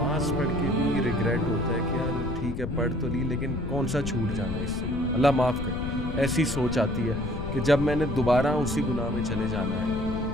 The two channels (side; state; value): left; noise; rumble, 4 dB below the sound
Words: پڑھ کے بھی ریگریٹ ہوتا ہے کہ یار ٹھیک ہے پڑھ تو لی, لیکن کون سا چھوٹ جانا ہے اس سے, اللہ معاف کر. ایسی سوچ آتی ہے کہ جب میں نے دوبارہ اسی گناہ میں چلے جانا ہے